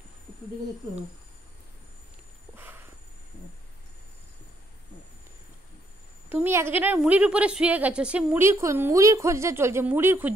একটু দিকে একটু। তুমি একজনের মুড়ির উপরে শুয়ে গেছো, সে মুড়ির খোঁজটা চলছে, মুড়ির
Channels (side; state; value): both; normal; correlation 0.71